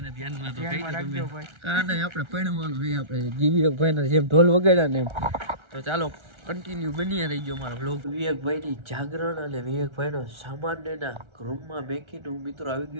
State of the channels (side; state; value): left; late; 1.3 ms